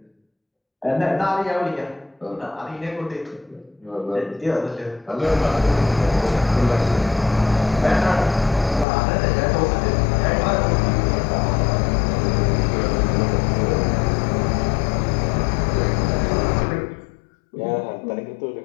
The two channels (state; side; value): drops out; right; at 8.8 s